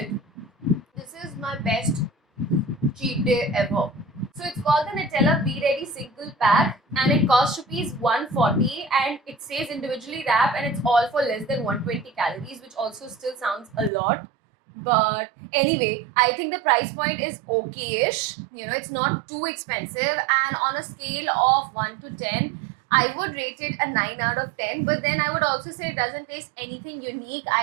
This is my best cheat day ever. So it's called the Nutella Be Ready single pack and it costs rupees 140 and it says individually wrap and it's all for less than 120 calories, which also still sounds a lot. But anyway, I think the price point is okay-ish. You know, it's not too expensive, and on a scale of 1 to 10, I would rate it a 9 out of 10. But then I would also say it doesn't taste anything unique.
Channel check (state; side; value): drops out; left; at 13.9 s